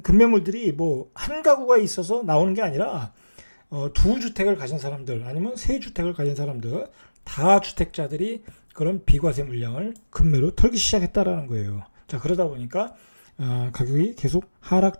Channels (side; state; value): both; inverted; correlation -1.00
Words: 급매물들이 뭐 한 가구가 있어서 나오는 게 아니라 두 주택을 가진 사람들, 아니면 세 주택을 가진 사람들, 다주택자들이 그런 비과세 물량을 급매로 털기 시작했다라는 거예요. 자, 그러다 보니까 가격이 계속 하락